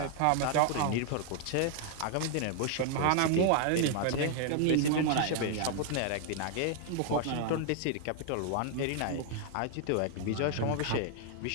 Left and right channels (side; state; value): both; different; correlation 0.00